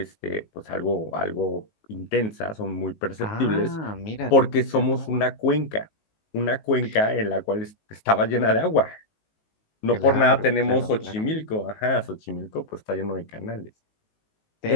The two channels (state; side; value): late; right; 19 ms